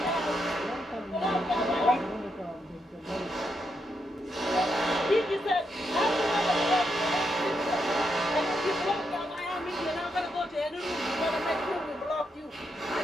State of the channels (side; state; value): both; normal; correlation 0.82